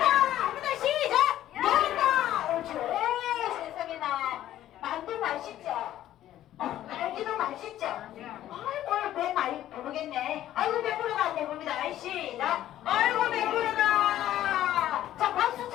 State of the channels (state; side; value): quieter; right; 12.8 dB